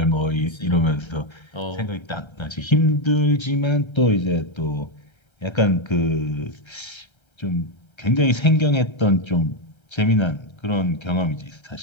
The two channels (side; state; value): right; late; 1.3 ms